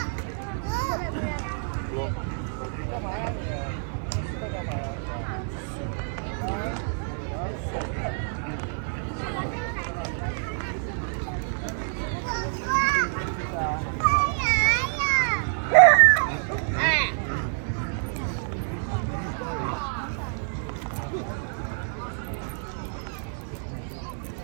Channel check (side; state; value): left; silent; 57 dB below the other